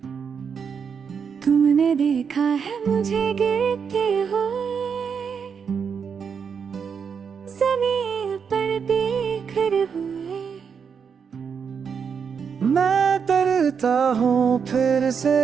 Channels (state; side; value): quieter; left; 6.6 dB